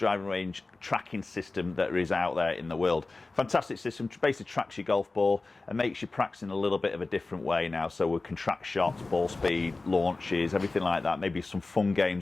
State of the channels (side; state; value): right; quieter; 3.4 dB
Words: range tracking system that is out there in the world. Fantastic system, basically tracks your golf ball and makes you practicing a little bit of a different way now. So we can track shots, ball speed, launches, everything like that. Maybe some fun